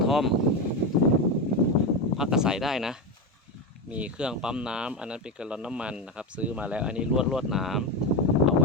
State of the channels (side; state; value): both; normal; correlation 0.15